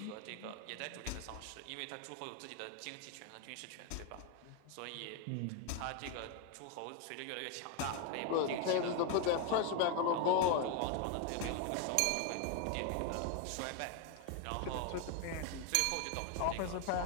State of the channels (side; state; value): both; different; correlation 0.01